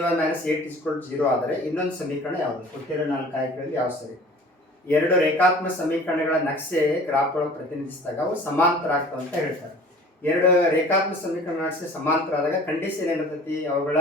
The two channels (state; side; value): normal; both; correlation 0.45